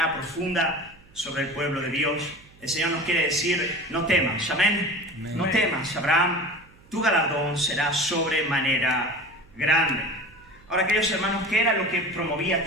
profunda sobre el pueblo de Dios. El Señor nos quiere decir: no temas, amén. No temas, Abraham, tu galardón será sobremanera grande. Ahora, queridos hermanos, ¿qué era lo que promovía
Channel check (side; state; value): right; noise; hum, 27 dB below the sound